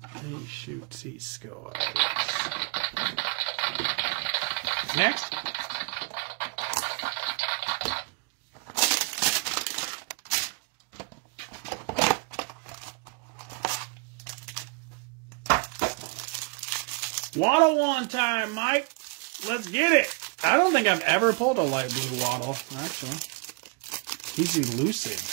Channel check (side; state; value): left; quieter; 32.3 dB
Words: He shoots, he scores. Next. Waddle one time, Mike. Let's get it. I don't think I've ever pulled a light blue Waddle, actually. He's elusive.